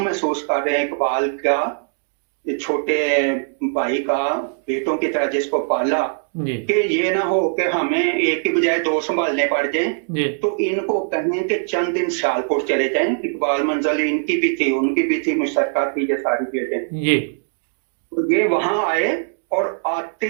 महसूस कर रहे हैं इकबाल का, ये छोटे भाई का, बेटों की तरह जिसको पाला, جی کہ یہ نہ ہو کہ ہمیں ایک کی بجائے دو سنبھالنے پڑ جائیں. جی تو ان کو کہیں کہ چند دن سیالکوٹ چلے جائیں. اقبال منزل ان کی بھی تھی، ان کی بھی تھی، مشترکہ تھی یہ ساری چیزیں. جی تو یہ وہاں آئے اور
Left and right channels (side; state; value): left; silent; digital silence